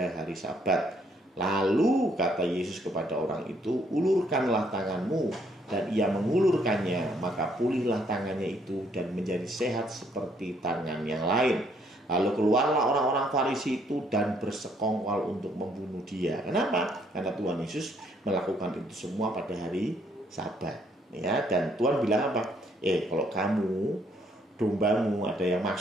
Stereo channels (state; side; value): normal; both; correlation 0.68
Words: hari Sabat. Lalu kata Yesus kepada orang itu, ulurkanlah tanganmu. Dan ia mengulurkannya, maka pulihlah tangannya itu dan menjadi sehat seperti tangan yang lain. Lalu keluarlah orang-orang Farisi itu dan bersekongkol untuk membunuh dia. Kenapa? Karena Tuhan Yesus melakukan itu semua pada hari Sabat. Ya, dan Tuhan bilang apa? Kalau kamu, dombamu ada yang